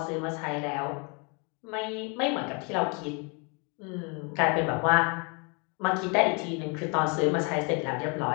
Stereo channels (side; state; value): right; quieter; 33.9 dB